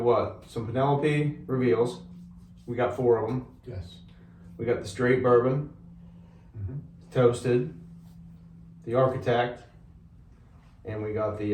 what? Some Penelope reveals. We got 4 of them. Yes. We got the straight bourbon, toasted, the architect, and we got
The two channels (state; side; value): identical; both; correlation 1.00